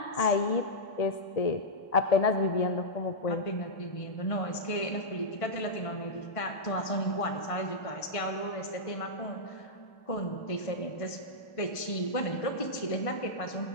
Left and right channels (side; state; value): right; late; 1.5 ms